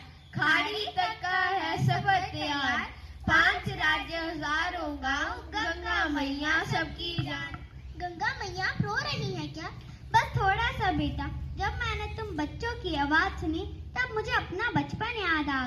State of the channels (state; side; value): identical; both; correlation 1.00